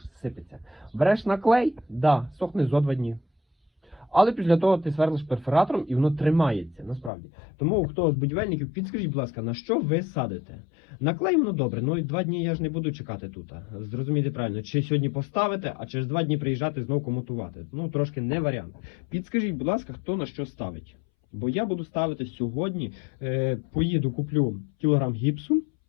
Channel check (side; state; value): right; drops out; at 7.1 s